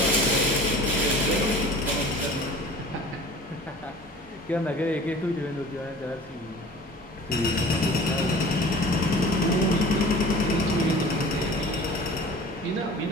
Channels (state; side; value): normal; both; correlation 0.43